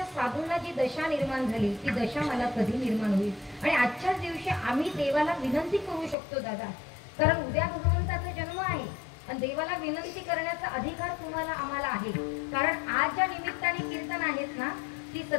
साधूंना जी दशा निर्माण झाली ती दशा मला कधी निर्माण होईल? आणि आजच्याच दिवशी आम्ही देवाला विनंती करू शकतो दादा, कारण उद्या भगवंताचा जन्म आहे आणि देवाला विनंती करण्याचा अधिकार तुम्हाला आम्हाला आहे. कारण आज ज्या निमित्ताने कीर्तन आहेत ना, ती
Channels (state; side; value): drops out; right; at 6.2 s